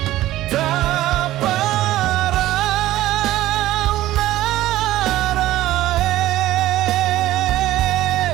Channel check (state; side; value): quieter; left; 15.1 dB